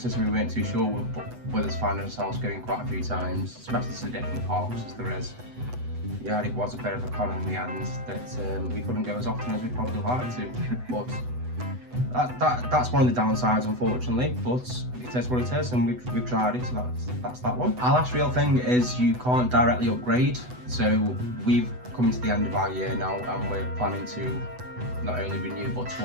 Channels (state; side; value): late; left; 8.0 ms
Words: so we weren't too sure. With us finding ourselves going quite a few times, especially to different parks as there is. Yeah, it was a bit of a con in the end that we couldn't go as often as we'd probably like to. But that's one of the downsides, unfortunately. But it is what it is, and we've tried it, so that's that one. Our last real thing is you can't directly upgrade. So we've come to the end of our year now, and we're planning to not only renew but to